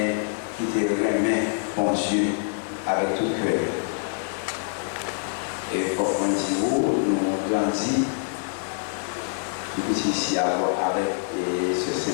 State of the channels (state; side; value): silent; right; 61 dB below the other